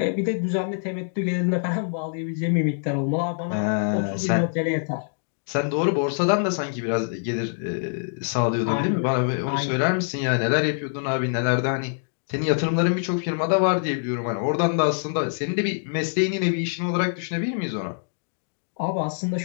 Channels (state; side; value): silent; right; digital silence